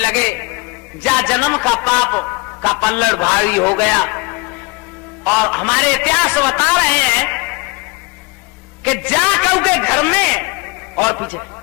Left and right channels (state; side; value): quieter; right; 26.9 dB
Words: जा जन्म का पाप का पल्लड़ भारी हो गया। और हमारे इतिहास बता रहे हैं कि जा कऊ के घर में, और पीछे,